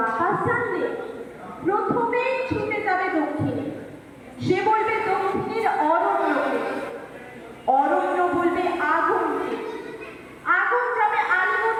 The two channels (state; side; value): identical; both; correlation 1.00